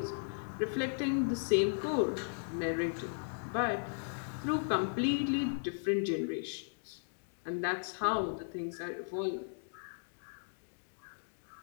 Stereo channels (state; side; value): silent; right; digital silence